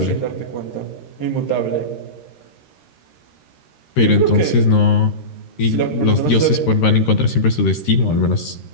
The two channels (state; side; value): late; right; 13 ms